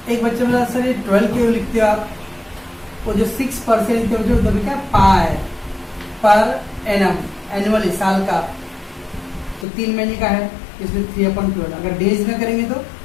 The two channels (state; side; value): drops out; right; at 9.7 s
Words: एक बच्चे बोला सर ये 12 क्यों लिखते हो आप, वो जो 6% लिखते हो जो क्या पा है पर एनम, एनुअली साल का, तो 3 महीने का है, इसमें 3/12। अगर डेज में करेंगे तो